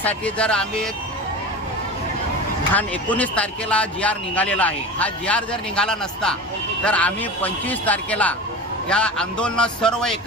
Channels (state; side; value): normal; both; correlation 0.31